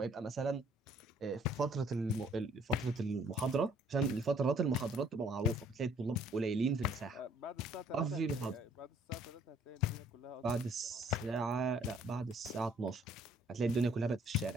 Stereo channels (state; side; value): normal; both; correlation 0.61